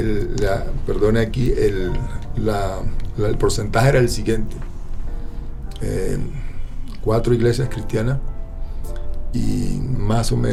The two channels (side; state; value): both; identical; correlation 1.00